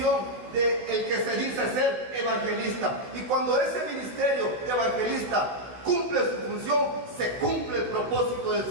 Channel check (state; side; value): late; left; 15 ms